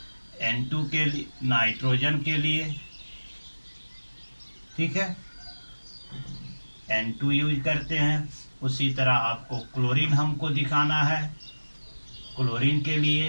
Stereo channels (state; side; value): inverted; both; correlation -1.00